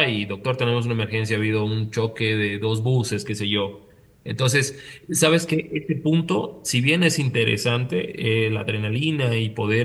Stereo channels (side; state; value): both; identical; correlation 1.00